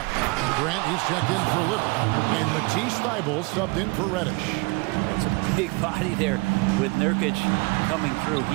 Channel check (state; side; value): quieter; left; 27.1 dB